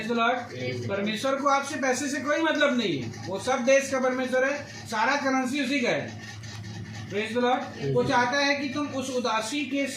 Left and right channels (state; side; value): identical; both; correlation 1.00